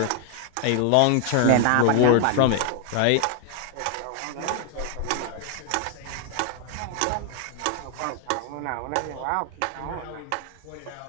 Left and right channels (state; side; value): different; both; correlation 0.00